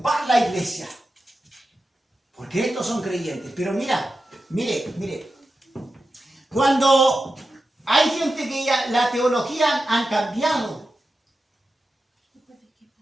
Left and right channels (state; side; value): normal; both; correlation 0.91